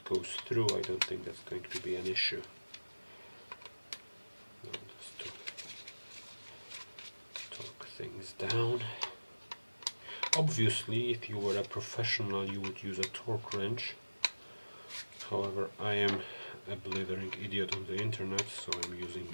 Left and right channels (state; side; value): inverted; both; correlation -1.00